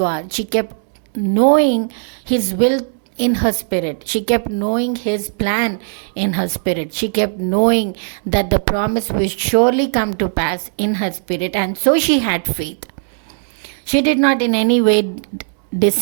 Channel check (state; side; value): silent; left; digital silence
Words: She kept knowing His will in her spirit. She kept knowing His plan in her spirit. She kept knowing that the promise will surely come to pass in her spirit. And so she had faith. She did not in any way